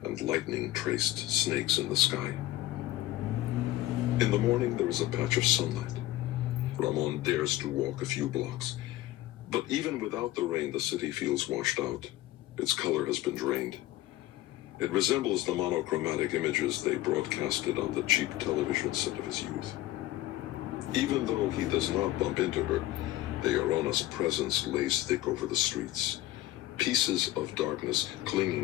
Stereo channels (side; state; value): right; quieter; 15.8 dB